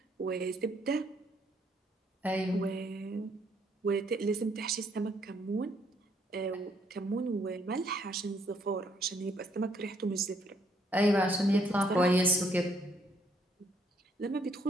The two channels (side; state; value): both; normal; correlation 0.70